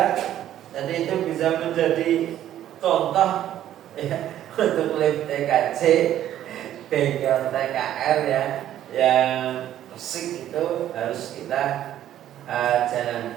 Jadi itu bisa menjadi contoh ya untuk lab TKC, bengkel TKR ya, yang resik itu harus kita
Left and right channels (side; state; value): left; quieter; 11.8 dB